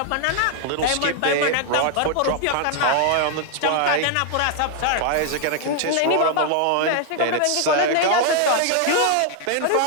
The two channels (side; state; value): both; different; correlation 0.00